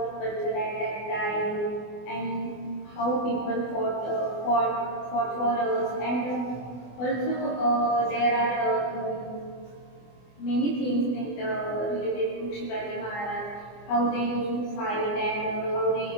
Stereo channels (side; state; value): right; late; 24 ms